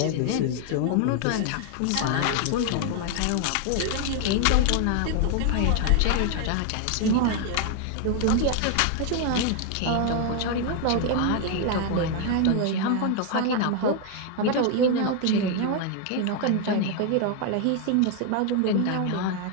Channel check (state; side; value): different; both; correlation 0.00